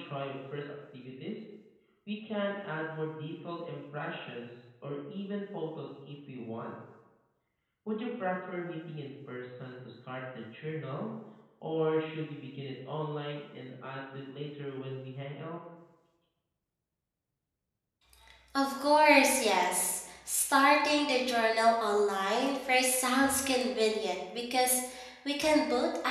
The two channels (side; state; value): both; identical; correlation 1.00